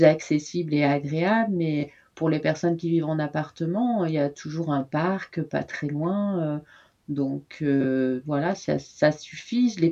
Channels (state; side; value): identical; both; correlation 1.00